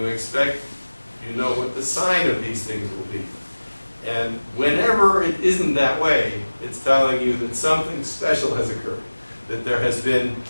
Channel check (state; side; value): inverted; both; correlation -1.00